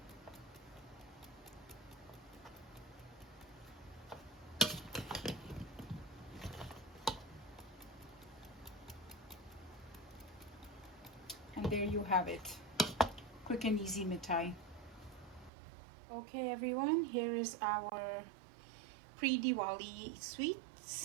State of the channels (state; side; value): drops out; left; at 15.5 s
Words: And there you have it, quick and easy mittai. Okay everyone, here is our pre-Diwali